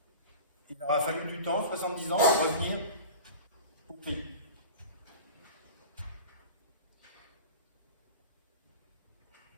Il leur a fallu du temps, 70 ans, pour revenir au pays.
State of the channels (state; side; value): inverted; both; correlation -0.36